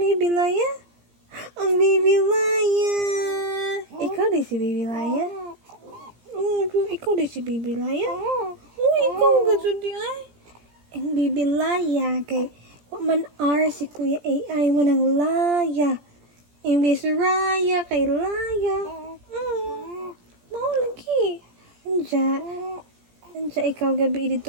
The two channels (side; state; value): left; late; 17 ms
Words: Laya? Ang baby Laya. Ikaw di si baby Laya? Ikaw di si baby Laya? Ikaw gado di ay. Ang baby Laya, kay man si Kuya AI mo ng Laya. Imbis Raya, kay Laya. Mau lagi. Anja ikaw gabi